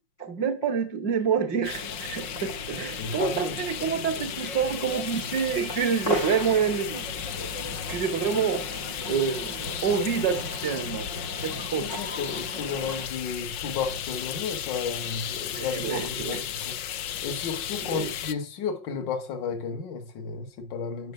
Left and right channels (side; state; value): right; late; 5.6 ms